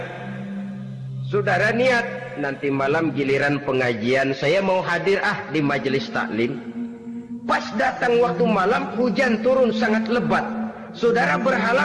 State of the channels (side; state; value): both; identical; correlation 1.00